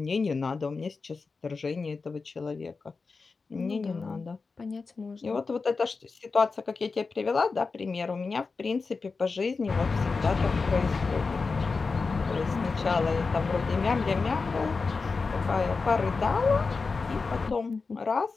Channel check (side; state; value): right; quieter; 4.4 dB